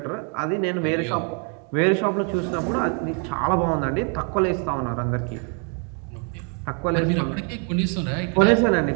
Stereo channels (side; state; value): left; quieter; 37.5 dB